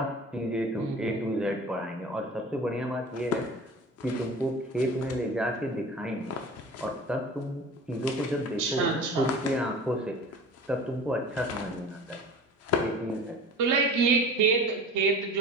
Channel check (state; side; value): normal; both; correlation 0.39